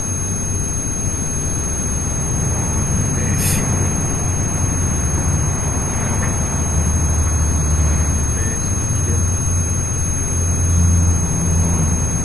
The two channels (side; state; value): left; noise; rumble, 2 dB below the sound